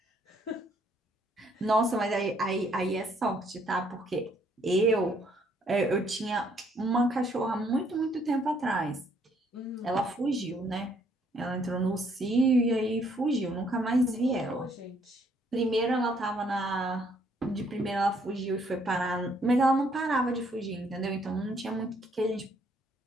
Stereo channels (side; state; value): both; normal; correlation 0.67